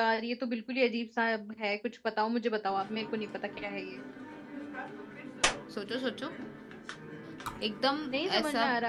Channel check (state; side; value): identical; both; correlation 1.00